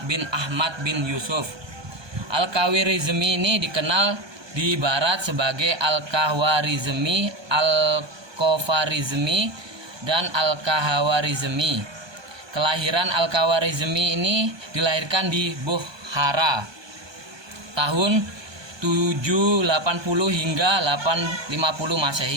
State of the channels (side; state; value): left; late; 1.2 ms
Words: bin Ahmad bin Yusuf. Al-Khawarizmi ini dikenal di barat sebagai Al-Khawarizmi, Al-Khawarizmi, dan Al-Khawarizmi. Kelahiran Al-Khawarizmi ini dilahirkan di Bukhara tahun 780 hingga 850